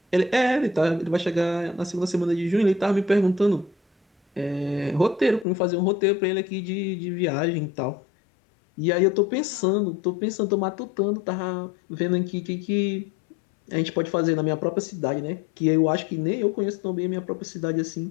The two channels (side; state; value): right; drops out; at 5.5 s